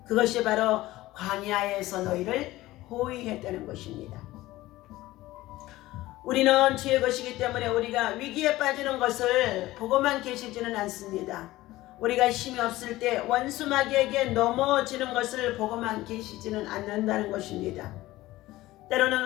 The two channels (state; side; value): quieter; right; 17.2 dB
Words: 그것이 바로 광야에서 너희를 호위했다는 것입니다. 우리는 주의 것이기 때문에 우리가 위기에 빠지는 것을 보고만 계시지는 않습니다. 우리가 힘이 없을 때 원수 마귀에게 넘어지는 것을 보고만 계시지는 않는다는 것입니다. 때로는